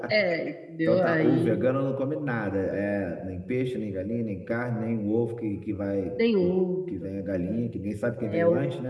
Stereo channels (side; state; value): both; identical; correlation 1.00